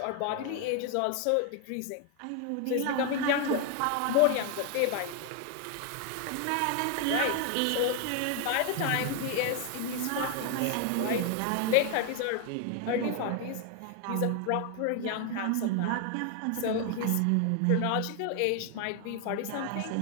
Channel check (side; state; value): both; different; correlation 0.00